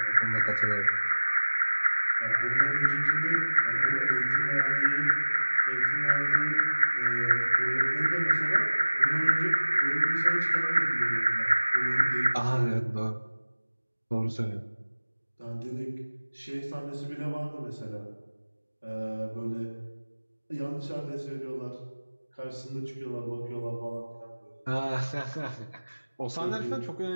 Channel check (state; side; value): inverted; both; correlation -1.00